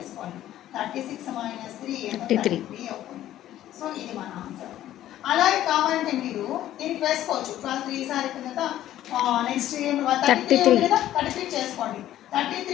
36 - 3 33 అవుతుంది. సో ఇది మన ఆన్సర్. అలాగే కావాలంటే మీరు దీనికి వేసుకోవచ్చు 12 3s అయిపోయిన నెక్స్ట్ 33 కదా 33 చేసుకోండి.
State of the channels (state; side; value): quieter; right; 12.9 dB